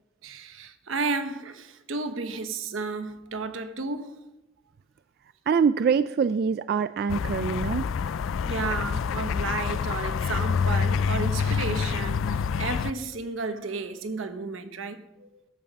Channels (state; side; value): normal; both; correlation 0.41